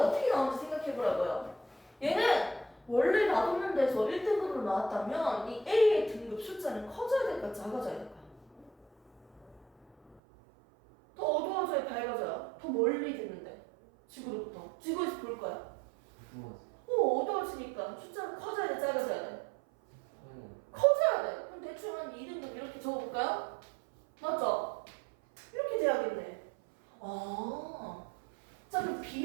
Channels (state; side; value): drops out; left; at 10.2 s